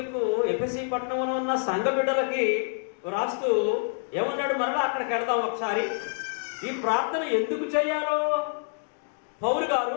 పట్టణంలో ఉన్న సంఘ బిడ్డలకి రాస్తూ ఏమన్నాడు? మరలా అక్కడికి వెళదాం ఒకసారి. ఈ ప్రార్థన ఎందుకు చేయాలో పౌలు గారు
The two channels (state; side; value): silent; right; 60 dB below the other